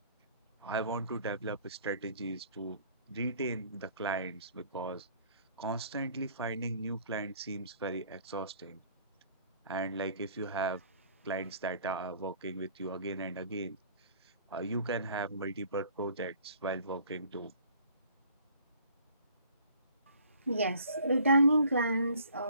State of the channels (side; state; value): both; inverted; correlation -0.55